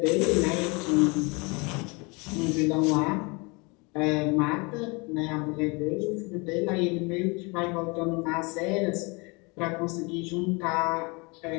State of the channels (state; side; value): quieter; right; 29.0 dB